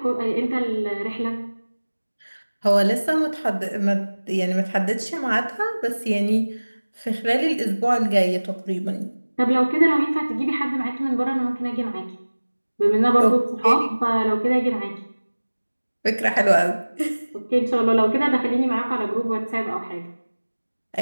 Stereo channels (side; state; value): both; inverted; correlation -1.00